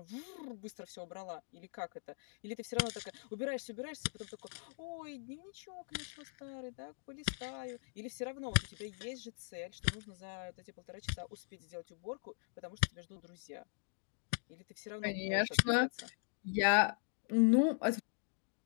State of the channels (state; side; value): silent; right; digital silence